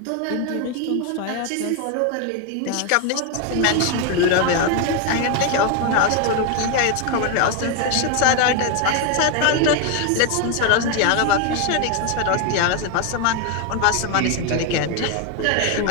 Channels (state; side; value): different; both; correlation 0.01